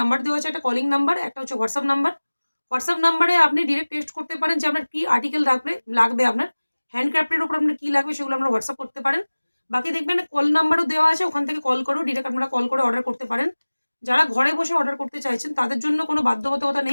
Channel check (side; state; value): both; inverted; correlation -1.00